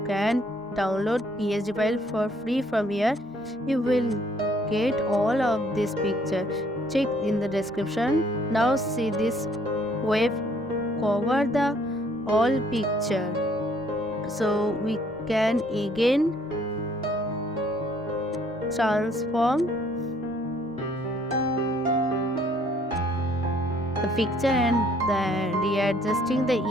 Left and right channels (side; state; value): both; normal; correlation 0.63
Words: can download PSD file for free from here. You will get all of this picture. Check in the description. Now see this wave cover the all picture, so we can again transform the picture and readjusting the